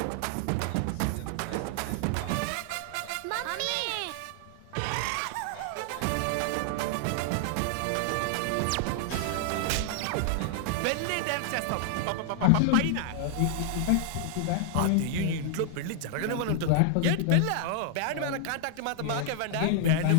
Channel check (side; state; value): both; different; correlation 0.00